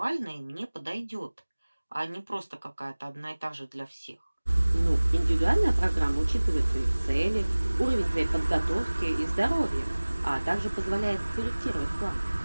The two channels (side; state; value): both; inverted; correlation -1.00